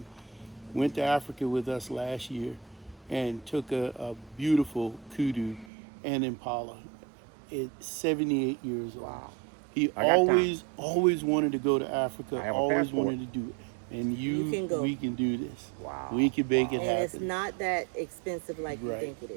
Went to Africa with us last year and took a beautiful kudu and impala at 78 years old. Wow. He I got always wanted to go to Africa, I have a always passport. wanted to do it. And You can go. we can do this. Wow. We can make it And happen. it's not that expensive like you Right. think it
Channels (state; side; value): drops out; left; at 5.7 s